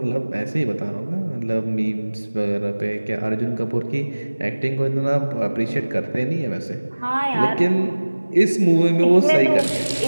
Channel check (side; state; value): both; inverted; correlation -1.00